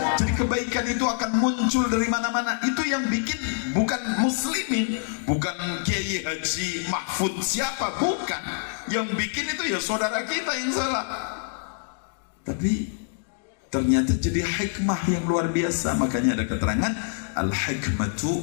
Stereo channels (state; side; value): silent; right; digital silence